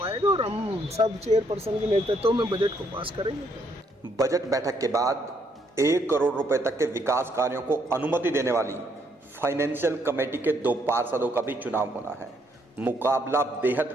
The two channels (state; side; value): normal; both; correlation 0.71